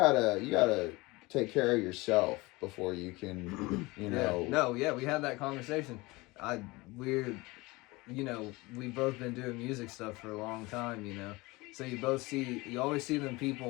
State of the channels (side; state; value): right; quieter; 22.7 dB